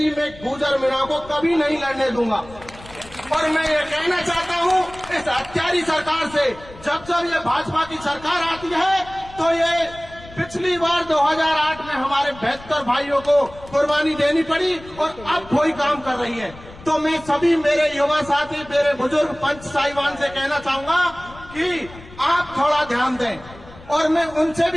मैं गुर्जर मीणा को कभी नहीं लड़ने दूंगा। और मैं ये कहना चाहता हूँ इस हत्यारी सरकार से, जब जब ये भाजपा की सरकार आती है तो ये पिछली बार 2008 में हमारे 72 भाइयों को कुर्बानी देनी पड़ी और अब कोई काम कर रही है। तो मैं सभी मेरे युवा साथी, मेरे बुजुर्ग पंच साहिबान से कहना चाहूंगा कि आप थोड़ा ध्यान दें। और मैं उनसे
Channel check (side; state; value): left; noise; rumble, 19 dB below the sound